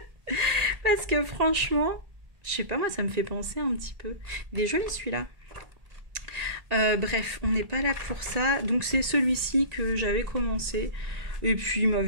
Parce que franchement, je sais pas, moi ça me fait penser un petit peu. Il est joli celui-là. Bref, on n'est pas là pour ça. Donc c'est celui-ci que j'avais commencé. Et puis il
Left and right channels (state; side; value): late; left; 1.8 ms